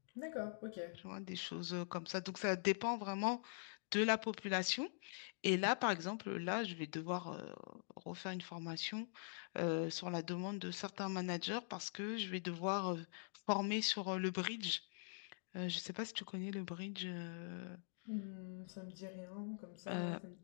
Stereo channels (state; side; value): silent; right; digital silence